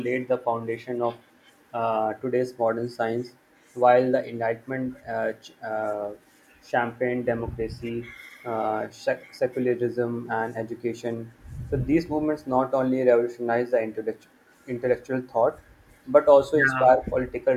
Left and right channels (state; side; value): identical; both; correlation 1.00